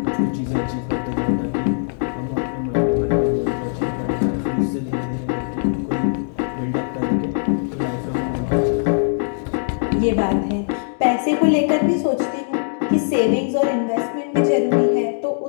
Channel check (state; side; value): silent; right; digital silence